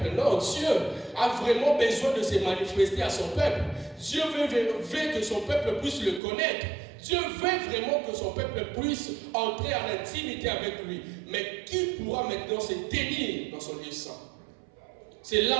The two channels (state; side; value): drops out; left; at 6.2 s